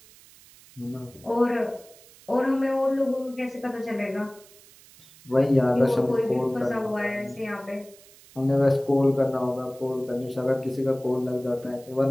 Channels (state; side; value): noise; right; hiss, 24 dB below the sound